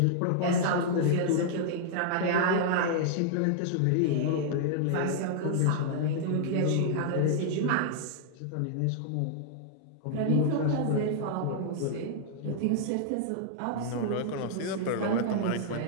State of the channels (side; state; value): both; different; correlation -0.01